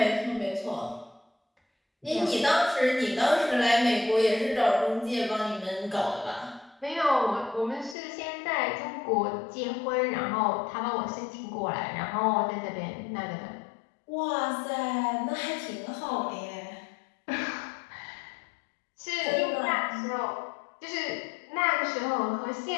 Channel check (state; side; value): drops out; right; at 8.0 s